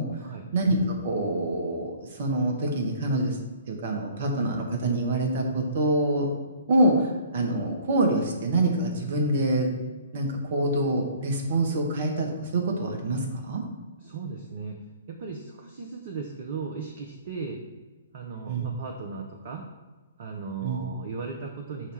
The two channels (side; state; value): both; inverted; correlation -0.51